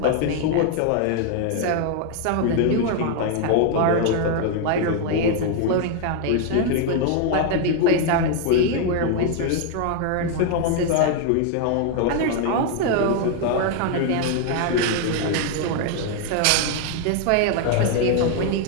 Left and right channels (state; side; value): different; both; correlation 0.01